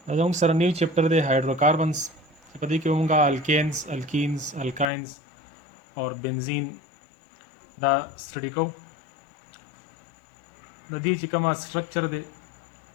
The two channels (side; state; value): right; drops out; at 4.9 s